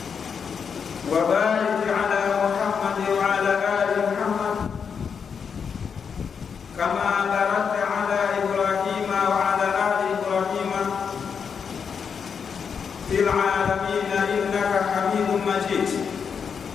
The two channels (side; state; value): right; quieter; 6.5 dB